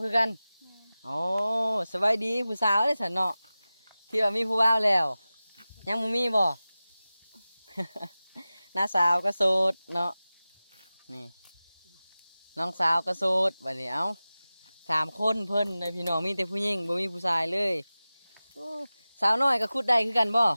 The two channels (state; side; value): inverted; both; correlation -0.96